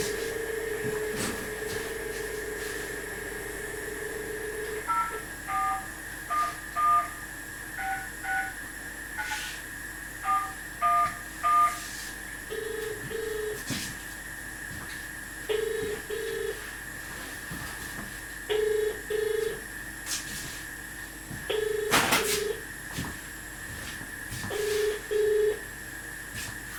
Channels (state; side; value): identical; both; correlation 1.00